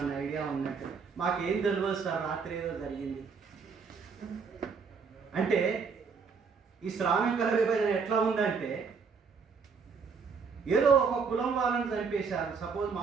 ఐడియా ఉన్నట్టు. మాకేం తెలియదు సార్, రాత్రి ఏదో జరిగింది అంటే. ఈ శ్రామికుల విభజన ఎట్లా ఉందంటే, ఏదో ఒక కులం వాళ్ళని చంపేశారు, సపోజ్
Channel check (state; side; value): quieter; left; 5.5 dB